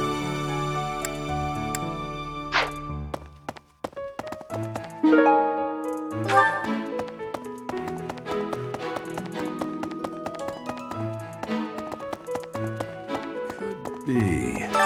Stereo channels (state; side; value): identical; both; correlation 1.00